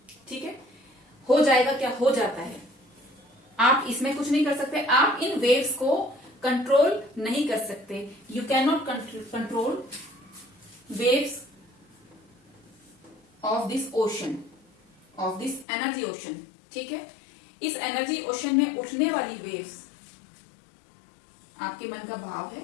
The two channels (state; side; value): drops out; right; at 15.7 s